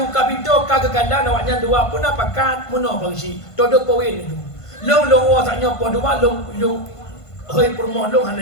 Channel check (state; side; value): late; right; 1.5 ms